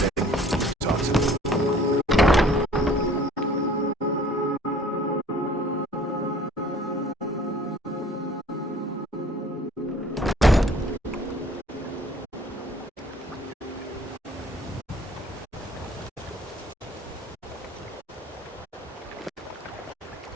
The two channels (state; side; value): normal; both; correlation 0.53